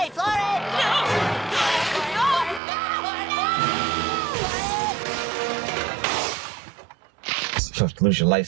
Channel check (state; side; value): drops out; left; at 2.6 s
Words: floor it. No. Lose your